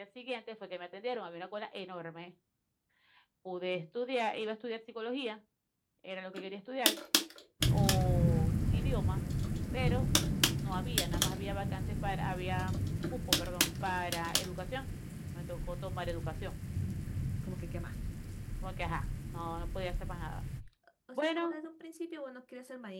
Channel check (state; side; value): identical; both; correlation 1.00